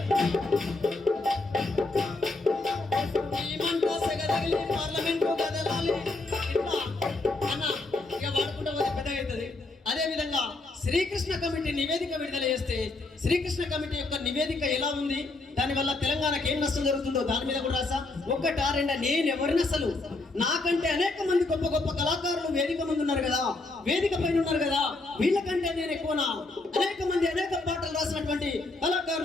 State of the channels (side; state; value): right; quieter; 3.2 dB